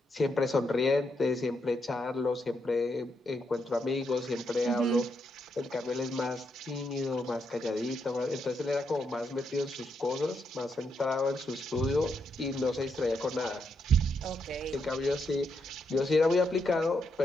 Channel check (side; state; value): both; normal; correlation 0.80